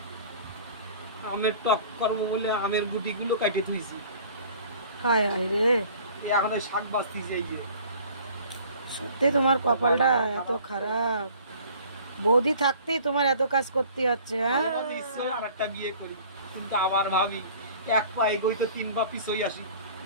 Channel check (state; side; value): inverted; both; correlation -0.49